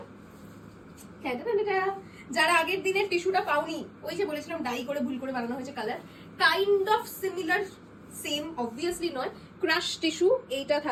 যারা আগের দিনের টিস্যুটা পাওনি, ওই যে বলেছিলাম ডাই করে ভুল করে বানানো হয়েছে colour, kind of similar, same obviously নয়। ক্রাশ টিস্যু, এইটা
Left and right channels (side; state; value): both; identical; correlation 1.00